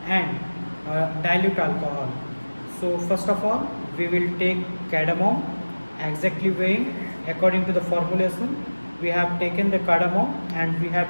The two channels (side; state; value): both; inverted; correlation -1.00